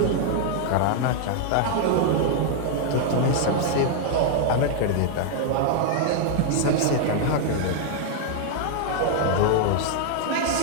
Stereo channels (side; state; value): both; different; correlation 0.00